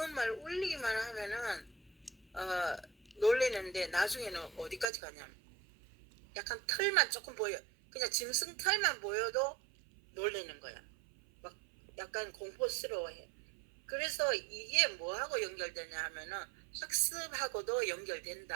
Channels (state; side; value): drops out; left; at 4.9 s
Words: 울리기만 하면은 놀리는데, 나중에는 어디까지 가냐면 약간 털만 조금 보여, 그냥 짐승 털만 보여도 놀리는 거야. 막 약간 공포스러워해. 그래서 이게 뭐하고 연결되냐 하면은 학습하고도